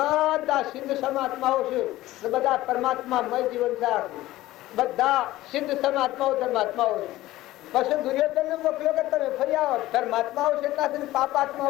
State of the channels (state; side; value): quieter; right; 16.4 dB